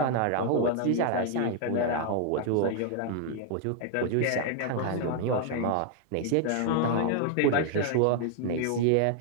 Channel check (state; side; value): different; both; correlation 0.00